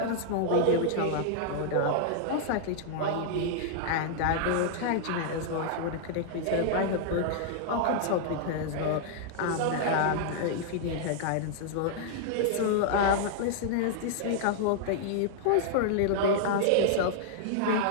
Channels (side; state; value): both; different; correlation -0.01